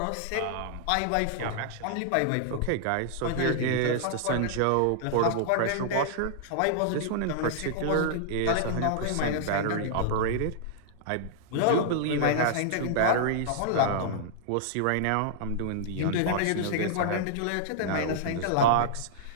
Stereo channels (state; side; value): different; both; correlation -0.01